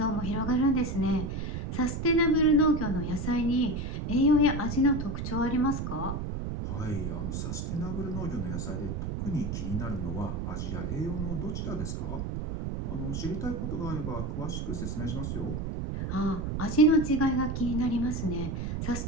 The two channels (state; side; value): noise; right; rumble, 3 dB below the sound